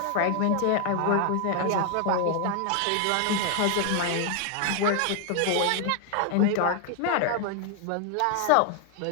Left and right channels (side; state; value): both; different; correlation 0.00